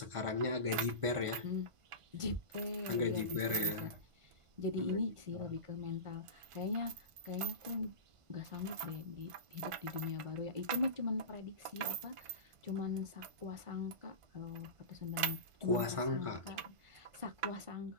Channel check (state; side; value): late; left; 1.5 ms